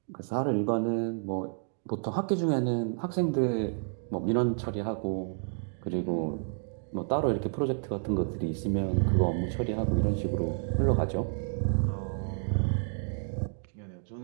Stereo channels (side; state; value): left; silent; 58 dB below the other